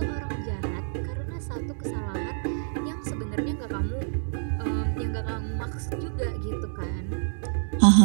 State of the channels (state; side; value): silent; left; digital silence